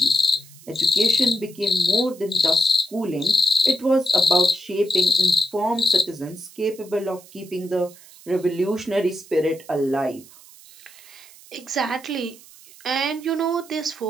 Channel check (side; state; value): right; noise; hiss, 22 dB below the sound